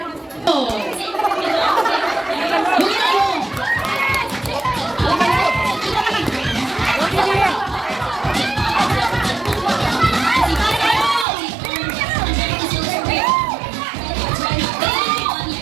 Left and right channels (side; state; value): left; drops out; at 11.2 s